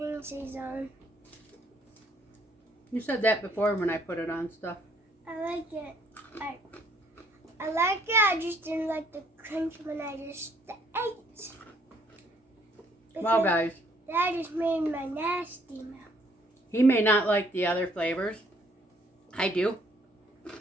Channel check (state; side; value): normal; both; correlation 0.65